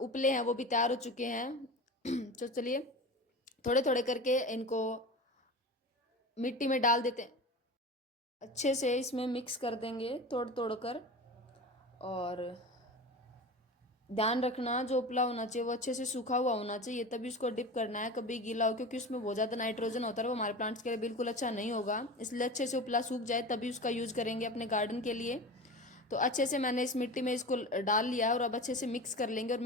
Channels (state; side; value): normal; both; correlation 0.31